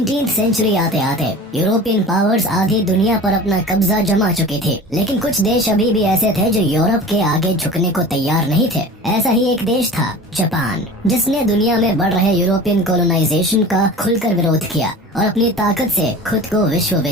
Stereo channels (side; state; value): both; normal; correlation 0.38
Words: century आते आते European powers आधी दुनिया पर अपना कब्जा जमा चुके थे, लेकिन कुछ देश अभी भी ऐसे थे जो यूरोप के आगे झुकने को तैयार नहीं थे। ऐसा ही एक देश था जापान, जिसने दुनिया में बढ़ रहे यूरोपियन कॉलोनाइजेशन का खुलकर विरोध किया और अपनी ताकत से खुद को विश्व